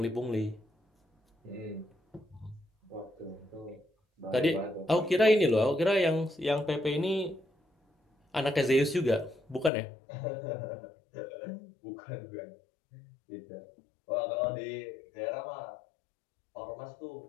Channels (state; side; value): drops out; right; at 9.7 s